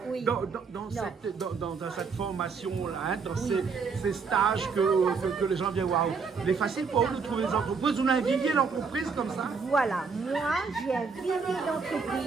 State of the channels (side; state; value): left; quieter; 5.2 dB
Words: dans cette formation-là, hein, dans ces stages que les gens viennent voir, il est facile pour vous de trouver des entreprises. Vous avez un vivier d'entreprise comme ça? Voilà, moi, j'ai un vivier